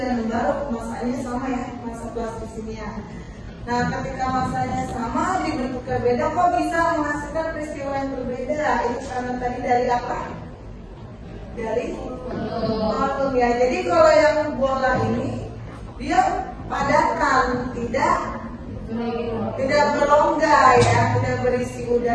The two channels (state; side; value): identical; both; correlation 1.00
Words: 6 balok, massanya sama ya, massa plastisinnya. Nah, ketika massanya sama, dibentuknya beda, kok bisa menghasilkan peristiwa yang berbeda? Itu karena tadi dari apa? Dari volume ya. Jadi kalau yang bola ini dia padatan, tidak berongga ya, tidak berisi